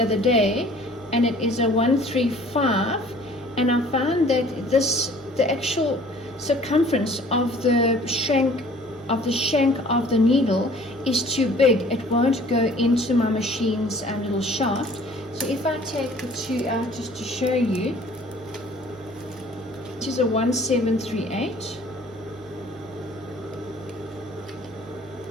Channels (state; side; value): normal; both; correlation 0.52